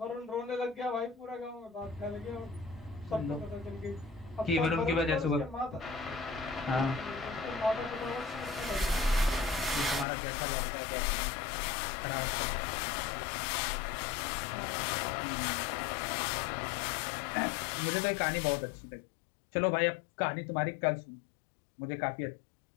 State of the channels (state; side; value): drops out; right; at 10.1 s